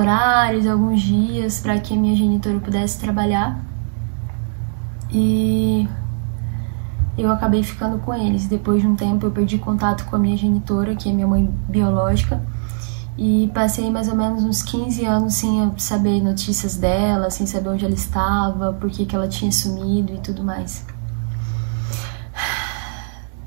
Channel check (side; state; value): left; silent; digital silence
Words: alguns dias para que a minha genitora pudesse trabalhar. E eu acabei ficando com eles. Depois de um tempo eu perdi contato com a minha genitora, que é minha mãe biológica, e passei mais ou menos uns 15 anos sem saber notícias dela, sem saber onde ela estava, por que ela tinha sumido e tudo mais.